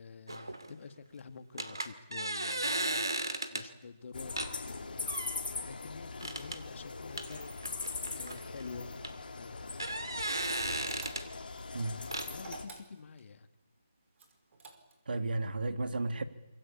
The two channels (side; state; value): both; inverted; correlation -0.62